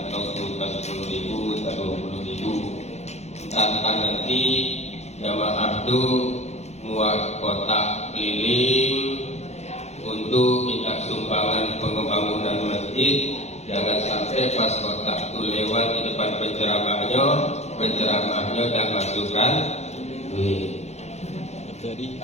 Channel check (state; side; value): late; right; 0.32 ms